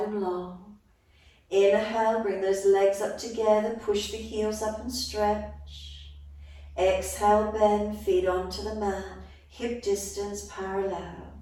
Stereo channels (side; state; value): both; identical; correlation 1.00